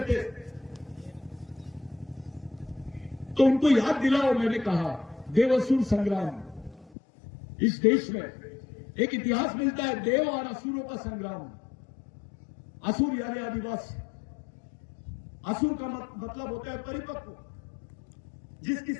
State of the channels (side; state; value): right; drops out; at 6.9 s